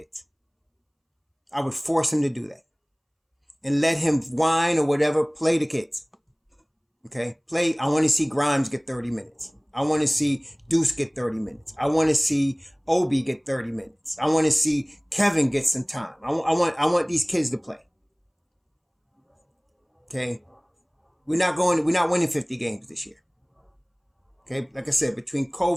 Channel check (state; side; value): identical; both; correlation 1.00